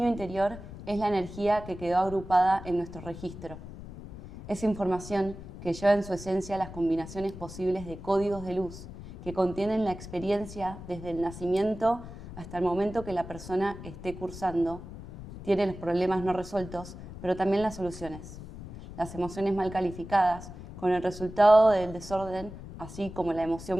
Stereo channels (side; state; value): left; noise; rumble, 13 dB below the sound